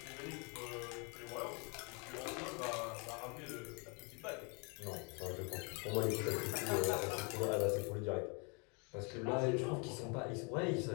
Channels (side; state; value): right; quieter; 33.7 dB